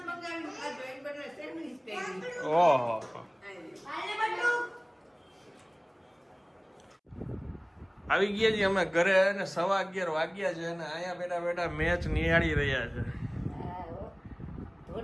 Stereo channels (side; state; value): both; identical; correlation 1.00